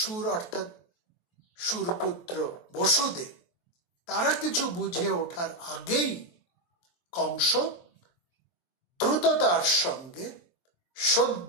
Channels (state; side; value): late; right; 23 ms